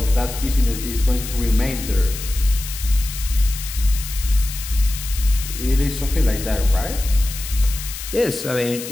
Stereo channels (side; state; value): left; noise; hiss, 9 dB below the sound